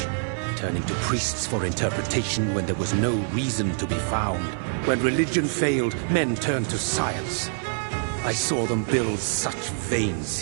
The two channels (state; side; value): silent; left; digital silence